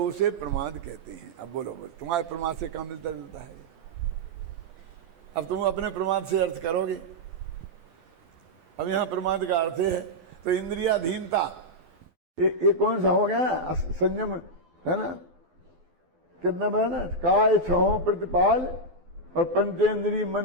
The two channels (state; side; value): late; left; 12 ms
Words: उसे प्रमाद कहते हैं। अब बोलो तुम्हारे प्रमाद से क्या मिलता जुलता है? अब तुम अपने प्रमाद से अर्थ करोगे। अब यहाँ प्रमाद का अर्थ है तो इंद्रियाधीनता, ये कौन सा हो गया? संयम है ना, कितना है ना, काय छहो प्रतिपाल और पंचेंद्रिय